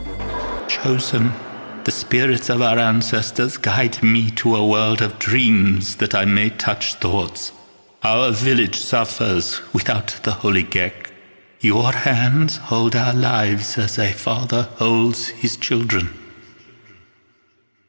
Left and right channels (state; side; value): inverted; both; correlation -1.00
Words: the spirits of our ancestors guide me to a world of dreams that I may touch thoughts. Our village suffers without the holy Gecko. Your hands hold our lives as a father holds his children.